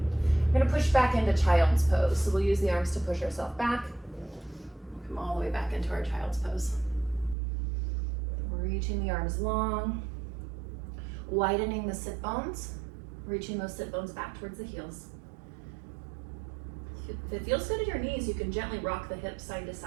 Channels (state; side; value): drops out; left; at 7.4 s